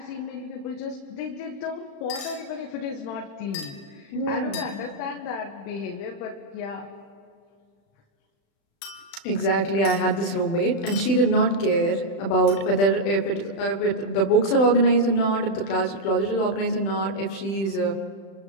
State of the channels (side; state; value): right; late; 36 ms